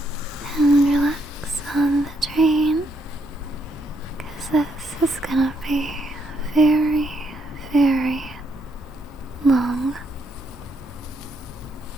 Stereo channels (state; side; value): normal; both; correlation 0.76